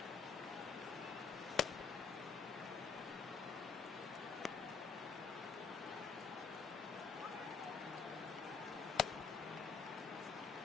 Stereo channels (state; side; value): quieter; right; 5.9 dB